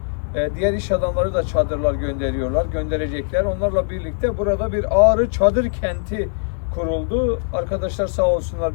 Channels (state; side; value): silent; right; 61 dB below the other